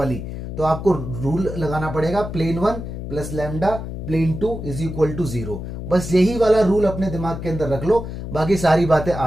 तो आपको रूल लगाना पड़ेगा plane 1 plus lambda plane 2 is equal to 0। बस यही वाला रूल अपने दिमाग के अंदर रख लो, बाकी सारी बातें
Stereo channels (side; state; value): left; noise; hum, 7 dB below the sound